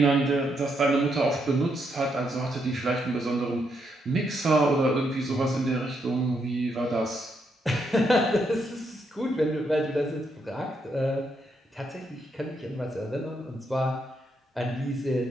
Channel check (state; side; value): normal; both; correlation 0.78